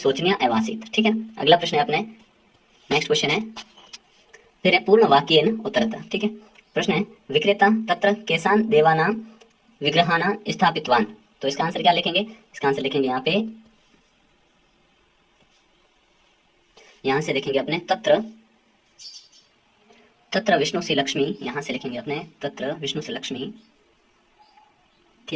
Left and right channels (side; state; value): both; identical; correlation 1.00